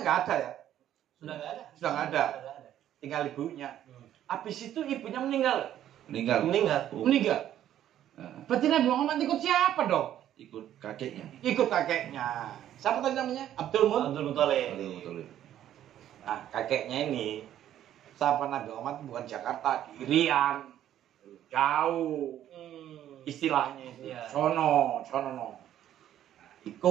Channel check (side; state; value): left; quieter; 11.5 dB